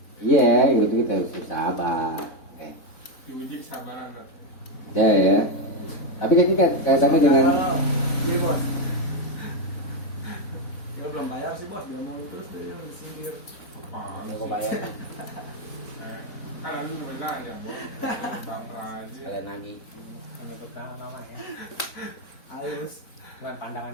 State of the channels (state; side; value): late; right; 4.1 ms